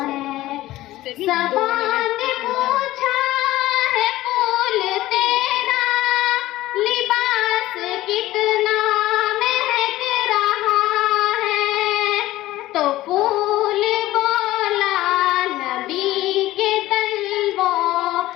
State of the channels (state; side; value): quieter; right; 16.2 dB